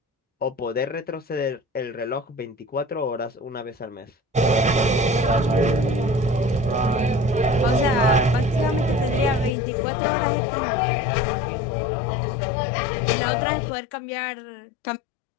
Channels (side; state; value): right; drops out; at 9.6 s